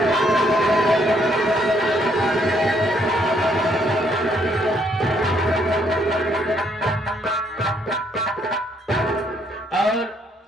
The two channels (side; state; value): both; normal; correlation 0.70